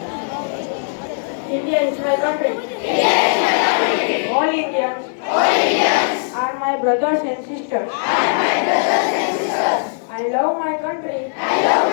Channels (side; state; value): right; silent; 67 dB below the other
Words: India is my country. All Indians are my brothers and sisters. I love my country.